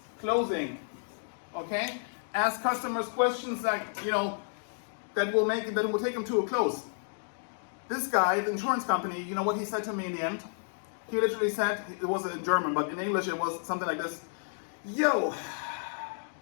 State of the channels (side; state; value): right; silent; digital silence